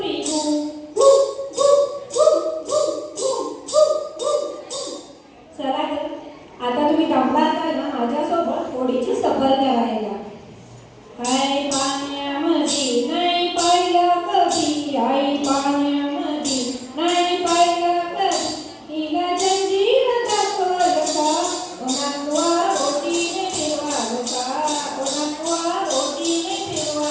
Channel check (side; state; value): both; identical; correlation 1.00